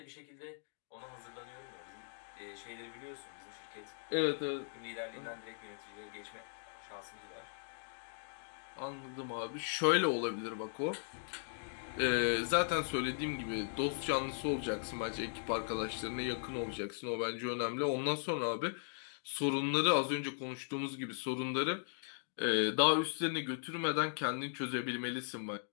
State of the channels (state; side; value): silent; right; digital silence